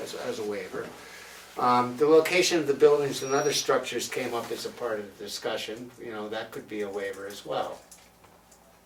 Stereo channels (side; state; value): both; identical; correlation 1.00